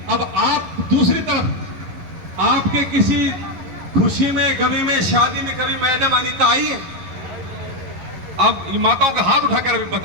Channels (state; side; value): late; left; 11 ms